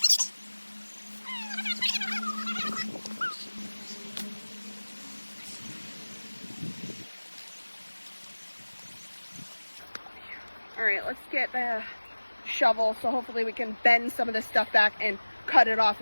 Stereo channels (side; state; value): both; inverted; correlation -1.00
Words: All right, let's get the shovel so hopefully we can bend some of this stuff back and cut it off